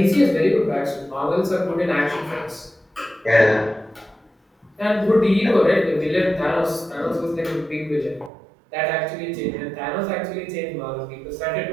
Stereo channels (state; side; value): drops out; left; at 8.3 s